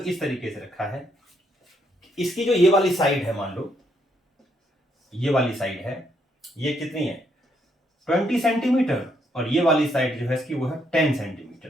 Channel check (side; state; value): both; normal; correlation 0.74